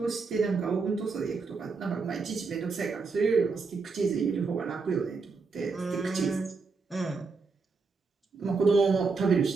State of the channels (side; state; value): left; quieter; 4.5 dB